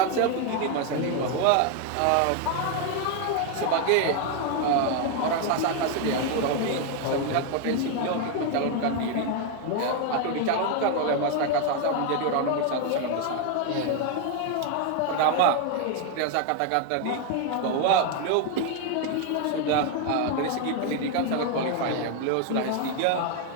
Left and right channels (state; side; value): different; both; correlation 0.01